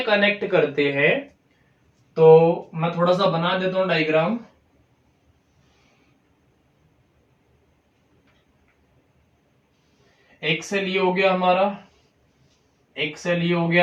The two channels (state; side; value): identical; both; correlation 1.00